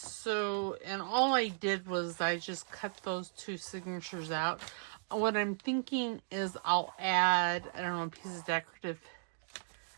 all I did was I just cut those two signatures out. What I'm thinking is I'll add, I don't know, a piece of decorative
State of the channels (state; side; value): silent; left; digital silence